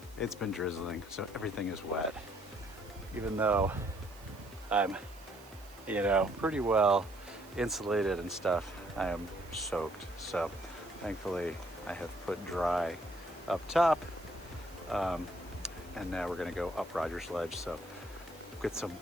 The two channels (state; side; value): noise; right; hiss, 23 dB below the sound